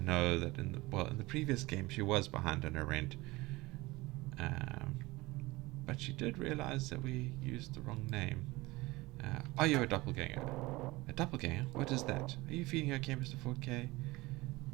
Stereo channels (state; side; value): quieter; left; 21.1 dB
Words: that in the previous game she was behind on her rent. But she did realize that we used the wrong name. Are you a doppelganger? A doppelganger? What is that? Are you feeling okay, Mr. 4K?